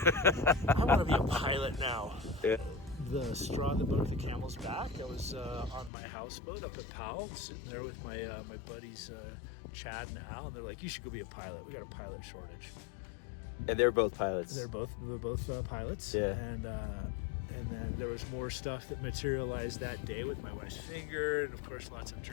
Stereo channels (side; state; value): right; drops out; at 5.9 s